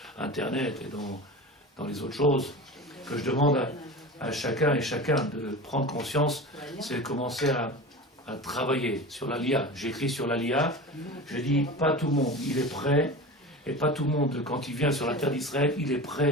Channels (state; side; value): normal; both; correlation 0.31